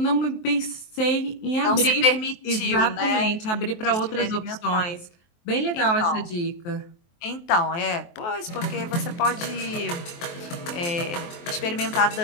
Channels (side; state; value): right; late; 23 ms